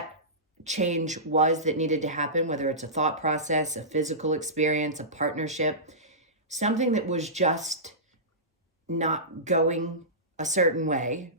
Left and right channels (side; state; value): both; normal; correlation -0.20